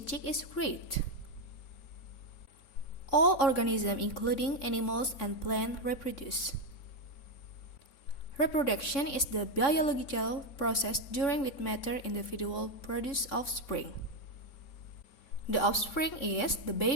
chick is great? All organisms, including animals and plants, reproduce. Reproduction is the biological process during which mature individuals produce offspring. The offspring is the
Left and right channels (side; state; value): right; late; 3.6 ms